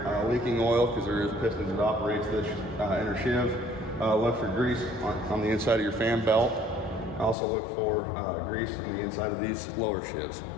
leaking oil because there is pistons that operates this inner sheave. Look for grease on the inside of your fan belt. Also look for grease on the inside of these lower sheaves.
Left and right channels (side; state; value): right; drops out; at 7.4 s